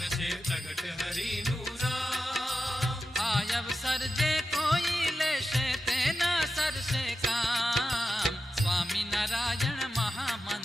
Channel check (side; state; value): both; normal; correlation 0.91